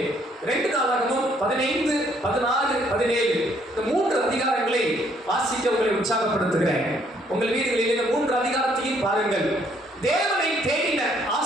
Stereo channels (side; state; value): both; normal; correlation 0.67